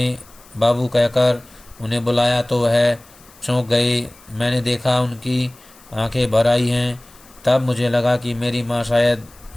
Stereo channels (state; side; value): noise; left; hiss, 26 dB below the sound